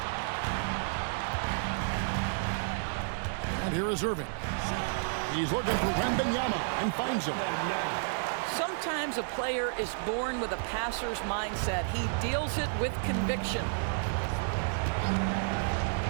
And here is Irving. He's looking for Wembanyama and finds him. Sometimes a player is born with a passer's mindset. He deals it with conviction.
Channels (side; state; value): left; silent; digital silence